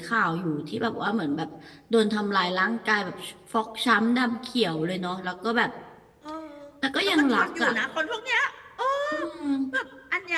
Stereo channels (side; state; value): both; identical; correlation 1.00